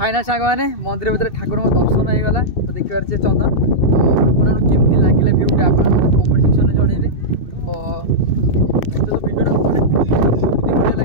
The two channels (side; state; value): right; late; 2.6 ms